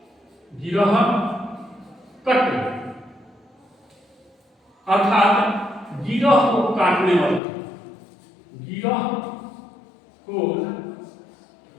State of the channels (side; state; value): right; drops out; at 7.4 s